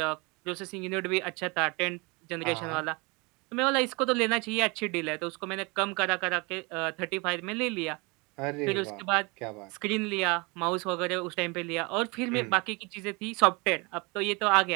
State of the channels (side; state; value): left; quieter; 28.0 dB